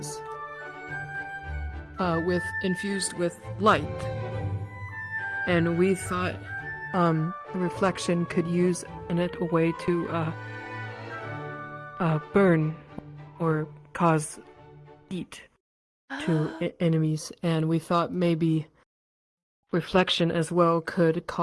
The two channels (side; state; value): both; identical; correlation 1.00